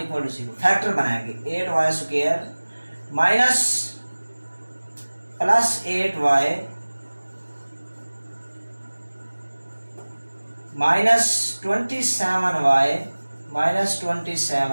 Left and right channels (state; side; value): inverted; both; correlation -1.00